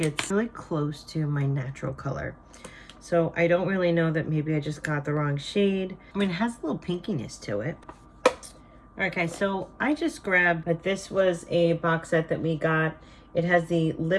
it's really close to my natural color. So I don't really know that maybe I just got the wrong shade. I mean, it has a little pinkiness to it. Okay, so I just grabbed, but this was a box set that we got. It has the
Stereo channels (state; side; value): identical; both; correlation 1.00